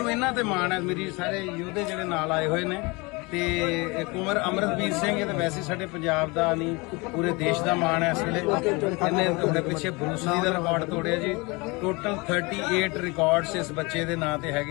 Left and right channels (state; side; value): quieter; right; 26.5 dB